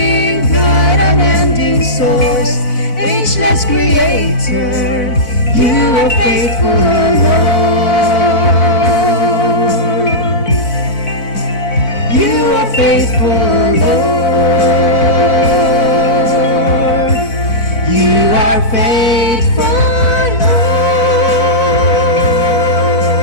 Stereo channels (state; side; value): late; right; 4.0 ms